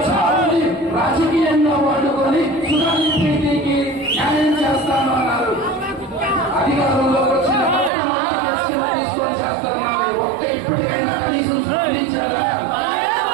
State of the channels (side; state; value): left; drops out; at 7.9 s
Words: చాలని రాజకీయంగా వాడుకొని సుధాని ప్రీతికి న్యాయం చేస్తాను అన్నారు. అధికారంలోకి వచ్చిన మొట్టమొదటి కేసులు తీసుకొని చేస్తున్నారు. ఇప్పటికైనా కనీసం స్పందించారా?